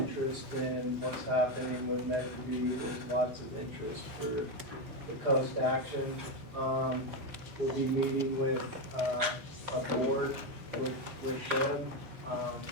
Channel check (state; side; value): late; left; 4.8 ms